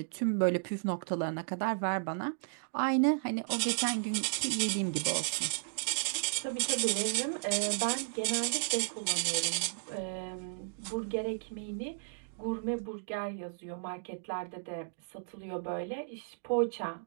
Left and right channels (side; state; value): left; silent; digital silence